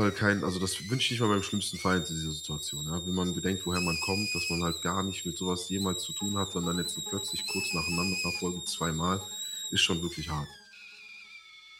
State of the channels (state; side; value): identical; both; correlation 1.00